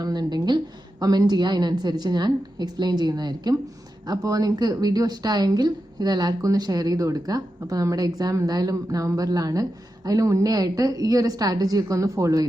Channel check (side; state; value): both; normal; correlation 0.90